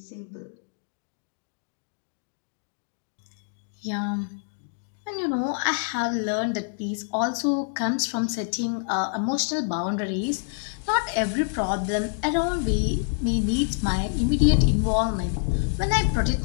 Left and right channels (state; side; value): silent; right; digital silence